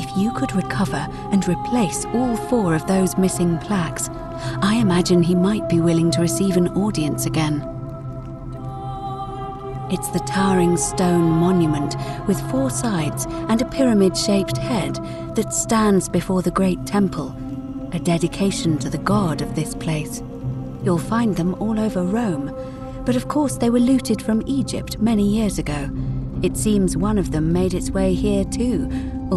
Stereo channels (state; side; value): identical; both; correlation 1.00